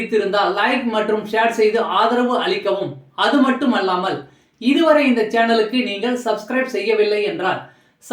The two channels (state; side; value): identical; both; correlation 1.00